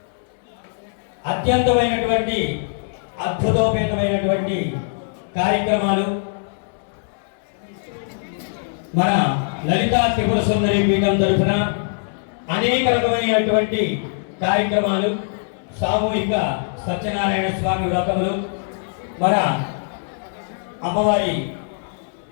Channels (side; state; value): right; silent; digital silence